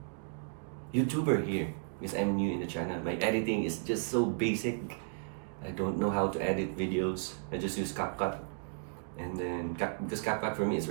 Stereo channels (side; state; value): left; silent; digital silence